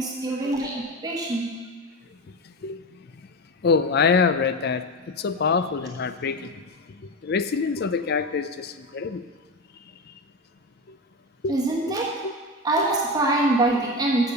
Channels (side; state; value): both; normal; correlation 0.19